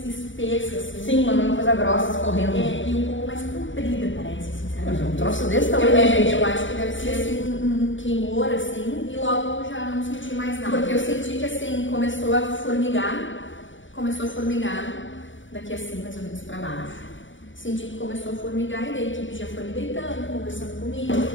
espessa, assim. Sim, uma coisa grossa escorrendo. E um pouco mais comprida, parece, sinceramente. Um troço desse tamanho, gente. Eu acho que deve ser assim, um queimor, assim, e logo eu já não senti mais nada. Porque eu senti que, assim, começou a formigar daqui assim, mais ou menos pra baixo. Senti que começou a formigar e daí a equipe já foi me deitando, conversando comigo.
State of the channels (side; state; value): right; late; 0.56 ms